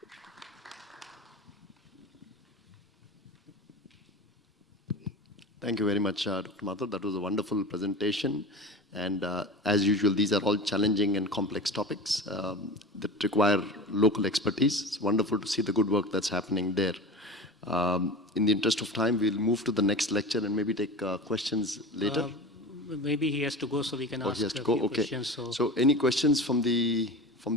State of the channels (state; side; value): normal; both; correlation 0.31